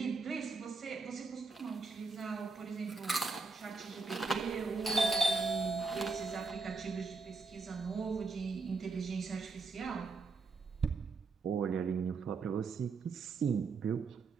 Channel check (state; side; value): quieter; left; 4.4 dB